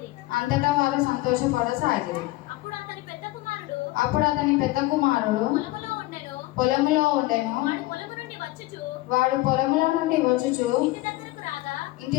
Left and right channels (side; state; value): right; quieter; 18.9 dB